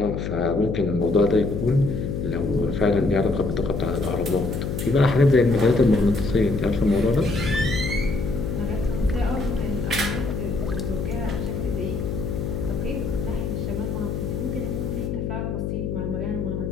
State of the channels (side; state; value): left; noise; hum, 3 dB below the sound